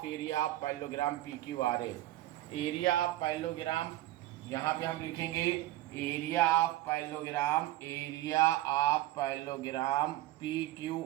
area of parallelogram PQRS। Area of parallelogram यहाँ पे हम लिखेंगे area of parallelogram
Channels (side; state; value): left; quieter; 15.8 dB